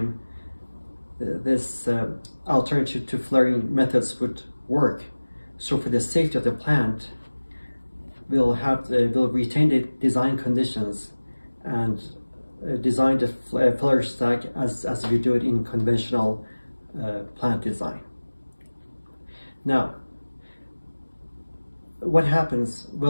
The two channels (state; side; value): inverted; both; correlation -1.00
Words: this alternative to flaring methods would work. So for the safety of the plant, we'll retain the design conditions and design the flare stack as we do it in conventional plant design. Now, what happens?